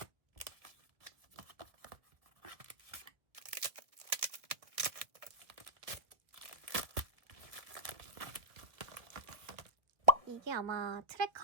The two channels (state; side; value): late; left; 1.7 ms